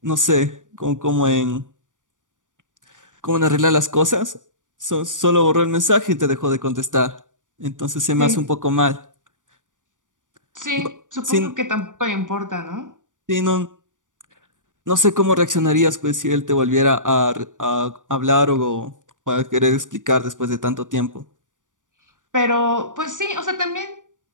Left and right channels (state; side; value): late; left; 0.87 ms